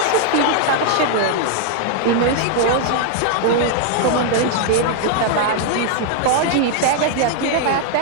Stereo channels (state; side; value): different; both; correlation -0.01